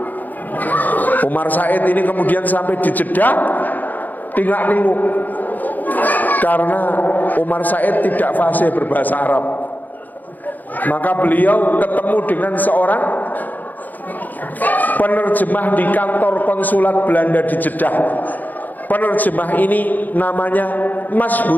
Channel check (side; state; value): right; late; 0.083 ms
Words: Umar Said ini kemudian sampai di Jeddah tinggal ninguk karena Umar Said tidak fasih berbahasa Arab. Maka beliau ketemu dengan seorang penerjemah di kantor konsulat Belanda di Jeddah. Penerjemah ini namanya